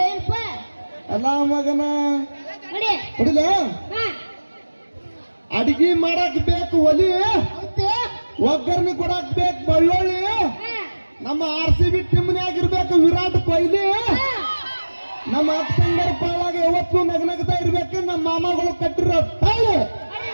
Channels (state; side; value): inverted; both; correlation -1.00